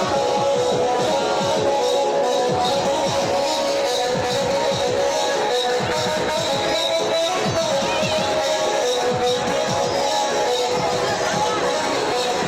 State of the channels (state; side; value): identical; both; correlation 1.00